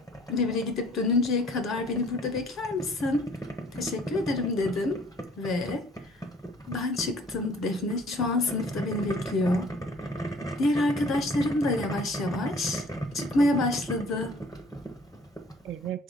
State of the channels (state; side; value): normal; both; correlation 0.55